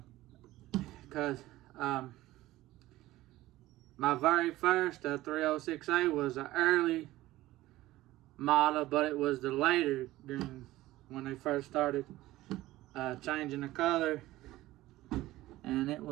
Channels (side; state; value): left; quieter; 16.7 dB